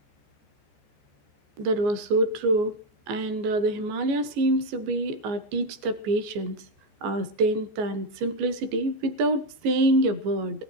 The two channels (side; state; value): left; late; 14 ms